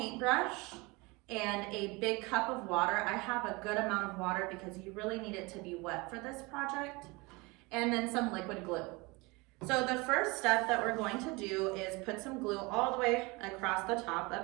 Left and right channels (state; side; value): quieter; left; 25.4 dB